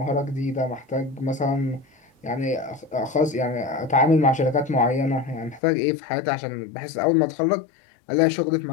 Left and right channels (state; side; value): drops out; right; at 5.6 s